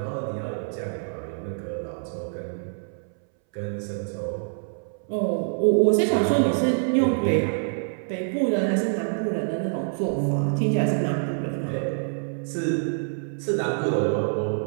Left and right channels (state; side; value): silent; left; 61 dB below the other